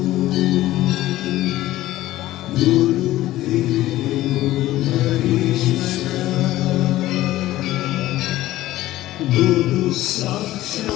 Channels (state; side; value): quieter; right; 15.6 dB